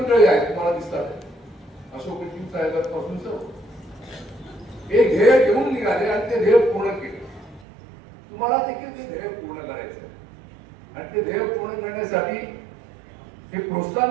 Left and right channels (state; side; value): drops out; left; at 7.7 s